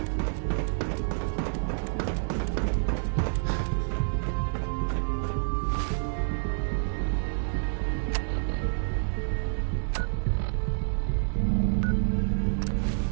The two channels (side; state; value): left; silent; 59 dB below the other